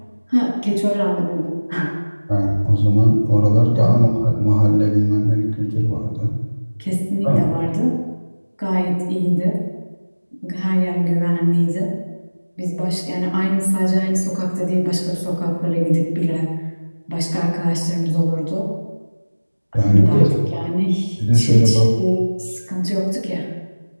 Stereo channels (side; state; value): both; inverted; correlation -1.00